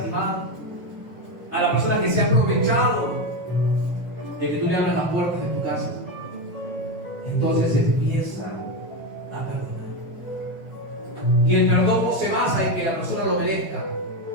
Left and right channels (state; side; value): normal; both; correlation 0.12